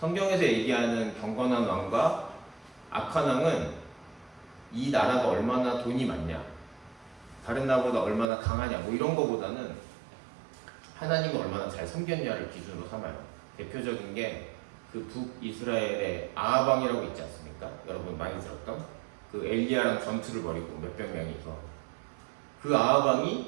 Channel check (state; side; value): drops out; left; at 8.2 s